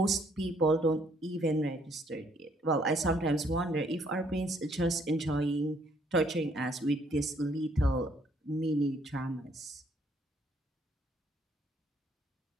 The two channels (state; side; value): normal; both; correlation 0.67